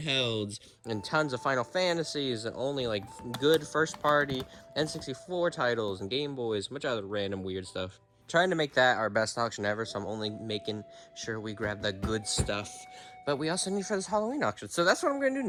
and tons of Final Fantasies and only like good first party N64 titles and Game Boys, much other random weird stuff. Trying to make that our best auction ever, so I'm only making sure we grab the good stuff. But we also need for this Halloween auction. So that's what I'm going to do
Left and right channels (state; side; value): identical; both; correlation 1.00